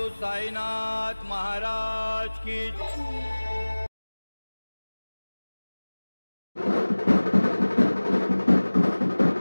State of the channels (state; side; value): inverted; both; correlation -1.00